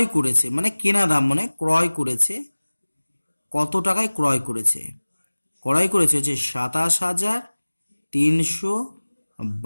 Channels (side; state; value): both; inverted; correlation -1.00